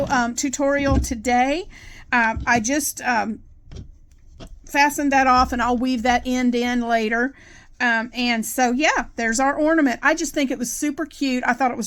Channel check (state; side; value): identical; both; correlation 1.00